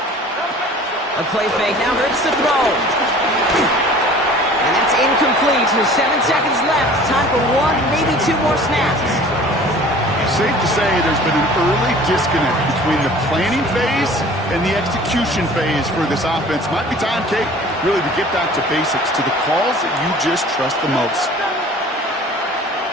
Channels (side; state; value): both; normal; correlation 0.46